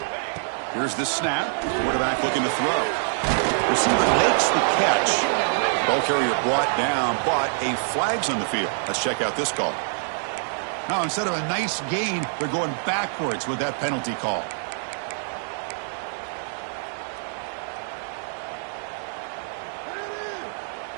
Here's the snap. Quarterback looking to throw. Receiver makes the catch. Ball carrier brought down, but a flag's on the field. Let's check out this call. Now, instead of a nice gain, they're going backwards with that penalty call.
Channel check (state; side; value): silent; left; digital silence